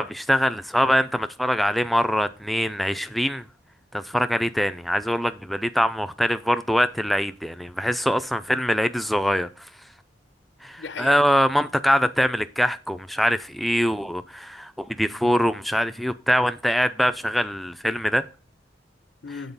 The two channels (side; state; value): both; normal; correlation 0.94